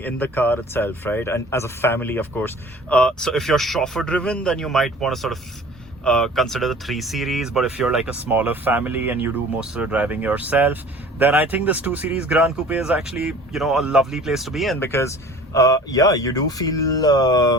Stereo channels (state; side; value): normal; both; correlation 0.46